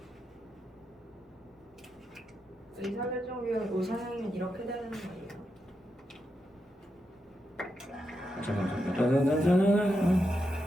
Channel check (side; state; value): both; normal; correlation 0.85